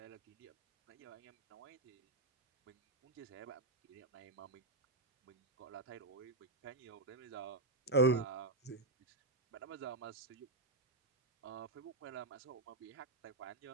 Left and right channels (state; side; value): quieter; left; 3.0 dB